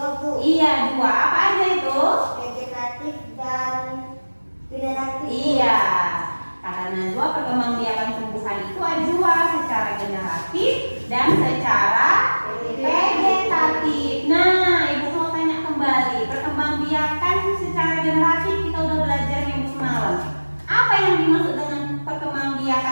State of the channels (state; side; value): inverted; both; correlation -1.00